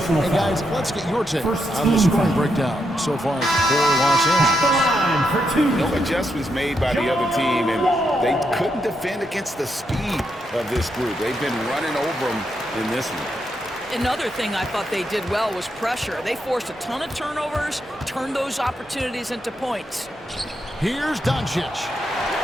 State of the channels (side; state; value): both; normal; correlation 0.81